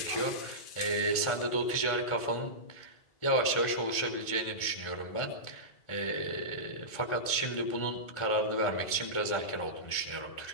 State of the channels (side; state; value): right; late; 1.5 ms